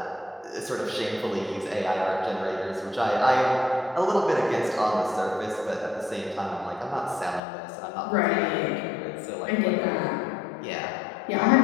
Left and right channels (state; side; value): drops out; right; at 7.4 s